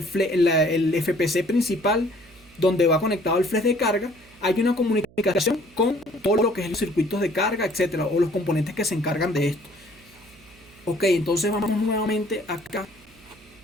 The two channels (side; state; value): right; noise; hum, 26 dB below the sound